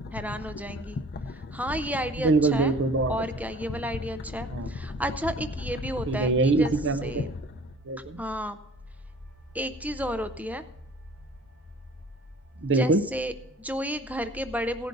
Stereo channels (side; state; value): both; normal; correlation 0.49